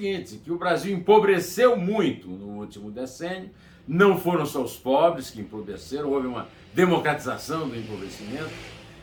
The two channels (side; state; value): both; identical; correlation 1.00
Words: que o Brasil empobreceu muito no último decênio, não foram só os pobres que empobreceram, houve uma democratização do empobrecimento,